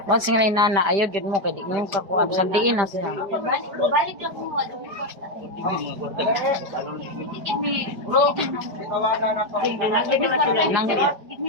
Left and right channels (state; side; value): late; left; 5.0 ms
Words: Once nga nana, ayaw din mo, kaya di mo yung kakuha. Sandiin na siya. Balik lang mo, ano mo kwarta. Nang, Give me